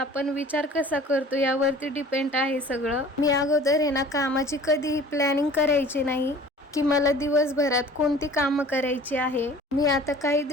विचार कसा करतो यावरती डिपेंड आहे सगळं। मी अगोदर आहे ना कामाची कधीही प्लॅनिंग करायची नाही की मला दिवसभरात कोणती कामं करायची आहे। मी आता काही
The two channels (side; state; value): both; normal; correlation 0.47